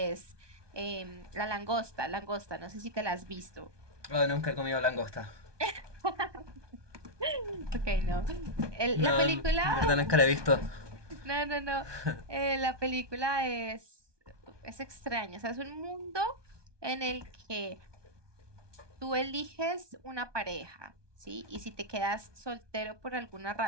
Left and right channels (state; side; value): late; left; 1.2 ms